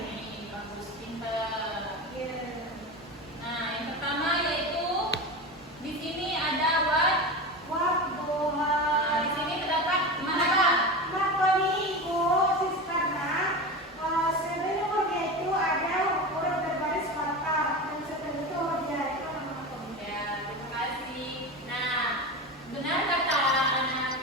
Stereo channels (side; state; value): both; normal; correlation 0.25